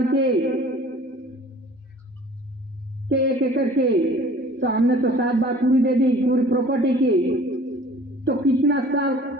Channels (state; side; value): normal; both; correlation 0.49